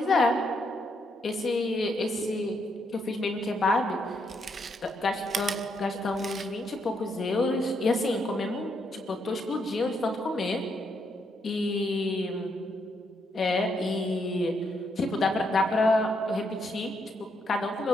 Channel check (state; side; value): normal; both; correlation 0.77